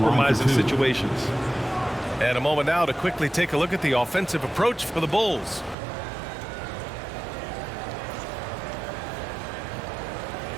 situations. And a moment now to quickly take a look at the offensive approach for the Bulls.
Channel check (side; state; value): left; drops out; at 5.8 s